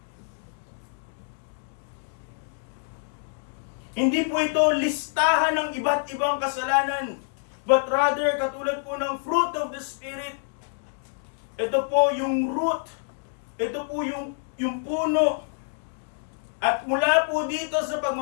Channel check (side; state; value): right; silent; digital silence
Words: Hindi po ito listahan ng iba't ibang kasalanan, but rather katulad po ng fruit of the Spirit. Ito po yung root. Ito po yung puno. At mula po dito sa